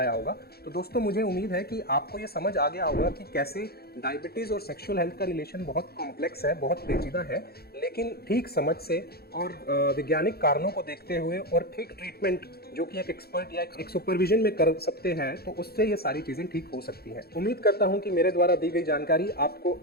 होगा। तो दोस्तों, मुझे उम्मीद है कि आपको ये समझ आ गया होगा कि कैसे डायबिटीज़ और सेक्सुअल हेल्थ का रिलेशन बहुत कॉम्प्लेक्स है, बहुत पेचीदा है, लेकिन ठीक समझ से और वैज्ञानिक कारणों को देखते हुए और ठीक ट्रीटमेंट जो कि एक एक्सपर्ट या एक सुपरविजन में कर सकते हैं, तो उससे ये सारी चीज़ें ठीक हो सकती हैं। उम्मीद करता हूँ कि मेरे द्वारा दी गई जानकारी आपको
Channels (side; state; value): right; late; 0.46 ms